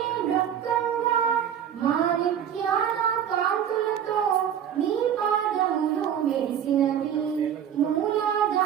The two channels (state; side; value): quieter; left; 9.2 dB